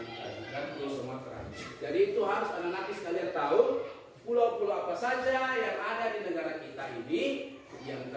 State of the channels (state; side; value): identical; both; correlation 1.00